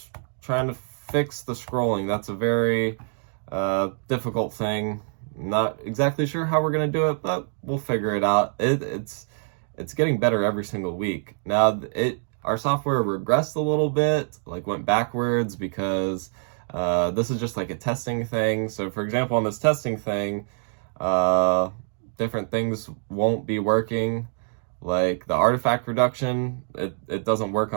trying to fix the scrolling. That's a very difficult thing. Not exactly sure how we're gonna do it, but we'll figure it out. It's getting better every single week. Now our software regressed a little bit, like went backwards, because this is just like a testing thing. So for example, on this testing thing, different things won't be working. Like the artifact reduction, it doesn't work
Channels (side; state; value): left; silent; 62 dB below the other